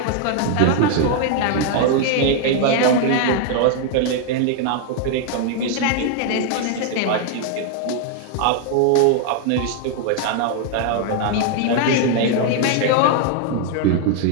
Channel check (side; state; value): both; different; correlation 0.00